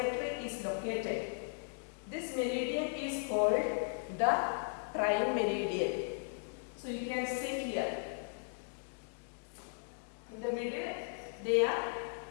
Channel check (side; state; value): right; silent; digital silence